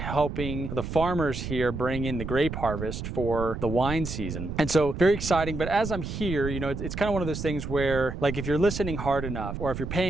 the farmers here bring in the grape harvest for the wine season. And so very exciting. But as I'm here, you know, it's kind of one of those things where, like, if you're listening hard enough or if you're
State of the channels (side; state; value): right; noise; rumble, 6 dB below the sound